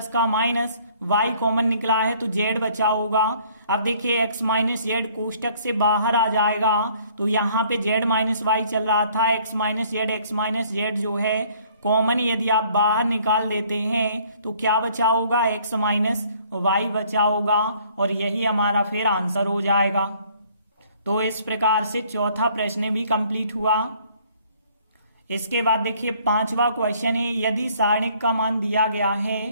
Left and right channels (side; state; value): both; inverted; correlation -0.59